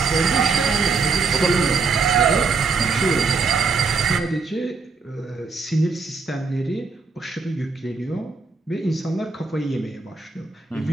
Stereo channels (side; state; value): left; quieter; 4.6 dB